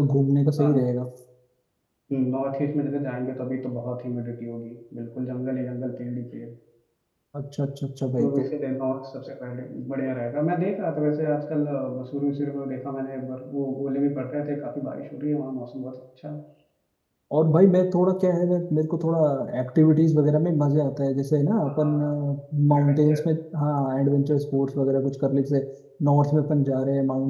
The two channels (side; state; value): both; identical; correlation 1.00